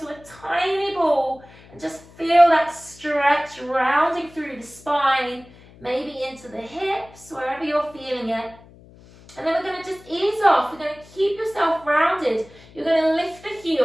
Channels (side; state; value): left; noise; hum, 23 dB below the sound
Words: a tiny ball. And just feel that stretch rounding through the spine, maybe into the hips, wherever you're feeling it. And then we're going to just ease off. We're going to keep yourself rounded. You're going to lift the